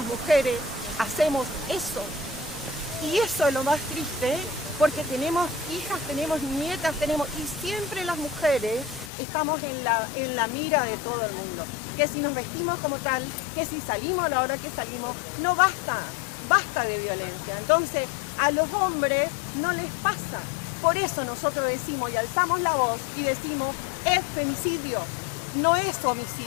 mujeres hacemos eso. Y eso es lo más triste, porque tenemos hijas, tenemos nietas, y siempre las mujeres estamos en la mira de todo el mundo. Que si nos vestimos como tal, que si salimos a la hora que salimos, no basta de violencia. Entonces, a los hombres no les pasa. Por eso nosotros decimos y alzamos la voz y decimos, es femicidio, no es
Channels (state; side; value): drops out; right; at 9.1 s